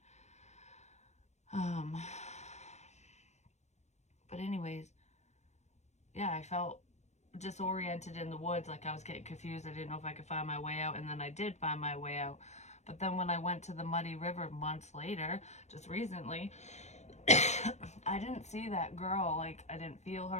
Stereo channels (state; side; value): late; right; 0.33 ms